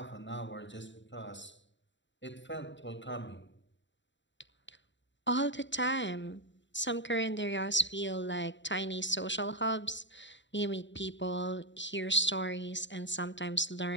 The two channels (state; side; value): late; right; 0.53 ms